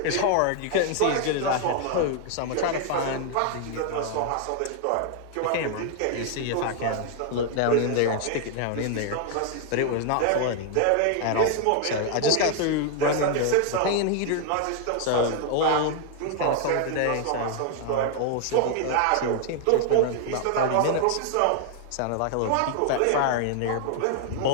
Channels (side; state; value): both; different; correlation 0.00